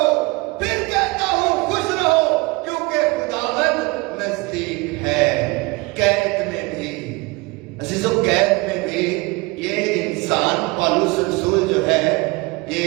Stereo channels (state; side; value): quieter; left; 24.9 dB